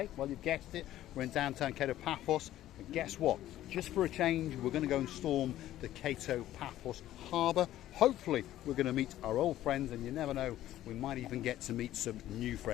Well, you've guessed it, we're in downtown Cato Paphos, and guess what? Just for a change, we're going to go and storm the Cato Paphos harbour. Hopefully, we're going to meet our old friends, and you never know, we might even get to meet some new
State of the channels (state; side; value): quieter; right; 13.6 dB